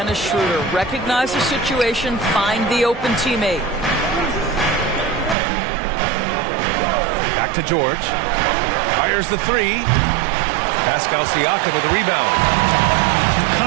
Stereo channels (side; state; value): left; drops out; at 5.4 s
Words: Schroeder. Recognize the situation, find the open teammate. Back to George. Fires the 3. Pascal Siakam with the rebound. You